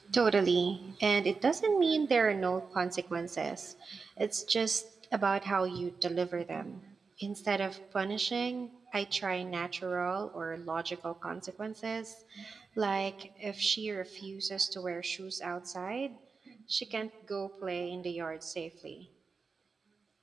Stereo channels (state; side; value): quieter; left; 4.8 dB